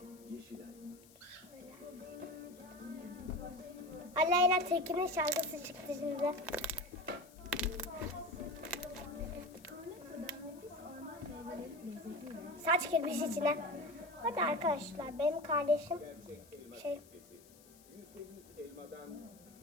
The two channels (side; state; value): left; noise; hiss, 24 dB below the sound